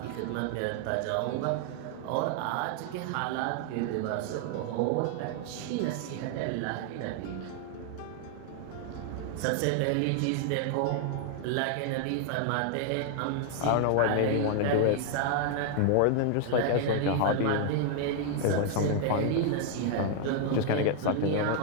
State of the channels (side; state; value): both; different; correlation 0.00